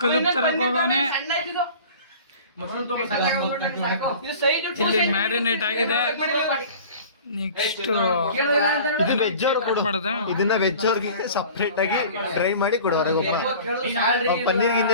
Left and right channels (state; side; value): inverted; both; correlation -0.43